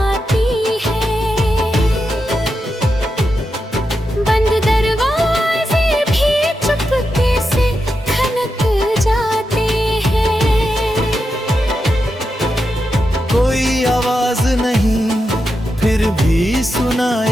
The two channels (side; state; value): both; normal; correlation 0.87